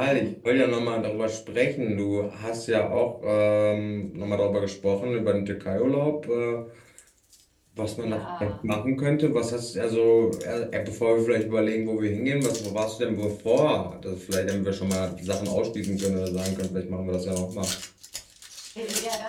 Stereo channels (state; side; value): identical; both; correlation 1.00